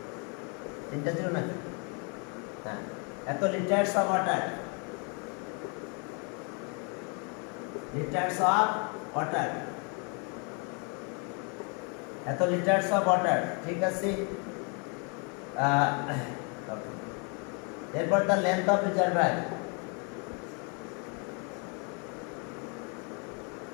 তিনটা ছিল নাকি? হ্যাঁ, এত litres of water. Litres of water, এত লিটার্স অফ ওয়াটার, ঠিক আছে। এরপর the length of reservoir,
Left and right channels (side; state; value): right; quieter; 35.9 dB